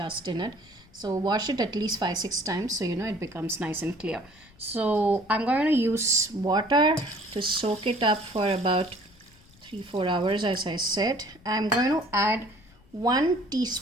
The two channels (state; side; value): noise; left; rumble, 27 dB below the sound